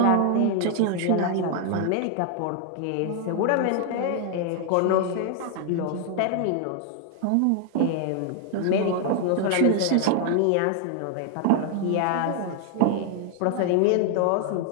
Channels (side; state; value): both; different; correlation 0.00